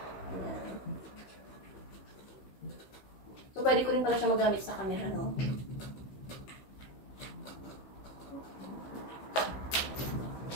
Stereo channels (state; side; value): late; right; 15 ms